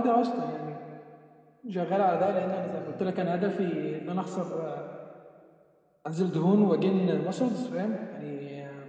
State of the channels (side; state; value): both; identical; correlation 1.00